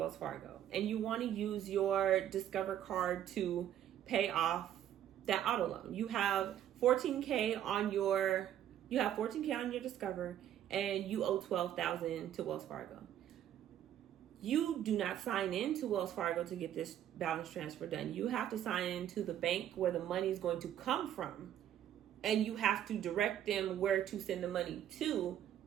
Fargo and you want to use your Discover card to pay off that auto loan. You have 14K on your Discover, and you owe $12,000 to Wells Fargo. You do not sign into Wells Fargo to get this balance transfer done. You have to sign into the bank where the money is going to come from, and you have to direct them where to send the money to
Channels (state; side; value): quieter; left; 11.0 dB